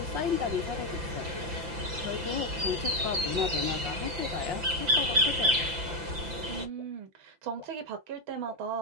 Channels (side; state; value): left; late; 5.9 ms